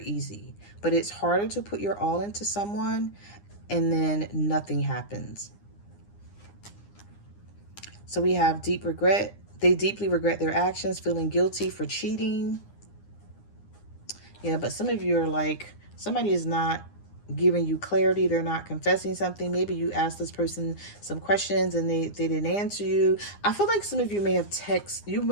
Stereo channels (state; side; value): late; right; 9.8 ms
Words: but it's harder to put your all into someone and then nothing happens. So we have deep regret. They deeply regret their actions, feeling guilty for cheating. Yeah, but some of you are like, somebody is not giving you clarity. They're not confessing something. Maybe you asked this person some questions and they didn't answer you. I feel like some of you may have